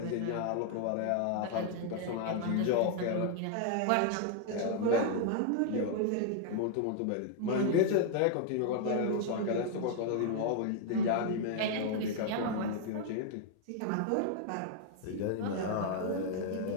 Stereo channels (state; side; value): different; both; correlation 0.00